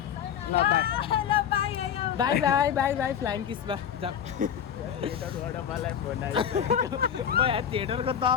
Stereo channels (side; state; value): right; quieter; 8.7 dB